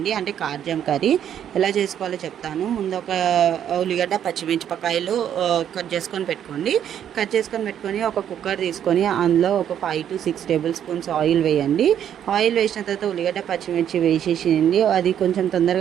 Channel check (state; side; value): quieter; left; 9.7 dB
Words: అంటే కార్జం కర్రీ ఎలా చేసుకోవాలో చెప్తాను. ముందు ఒక ఉల్లిగడ్డ, పచ్చిమిరపకాయలు కట్ చేసుకొని పెట్టుకోండి. కట్ చేసుకొని పెట్టుకొని ఒక కుక్కర్ తీసుకొని అందులో ఒక 5 to 6 టేబుల్ స్పూన్స్ ఆయిల్ వేయండి. ఆయిల్ వేసిన తర్వాత ఉల్లిగడ్డ, పచ్చిమిర్చి వేసేసింది. అది కొంచెం